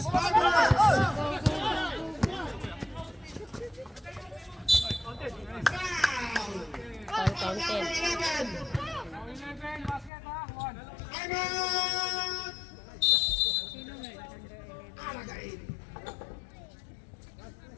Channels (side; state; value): right; drops out; at 10.1 s